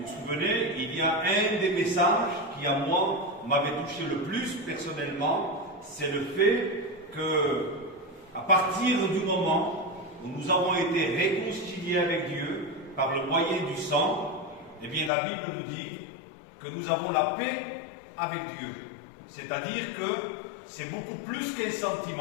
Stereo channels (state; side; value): drops out; right; at 15.1 s